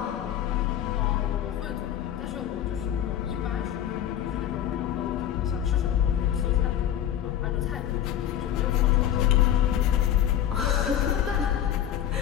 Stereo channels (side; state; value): right; quieter; 10.6 dB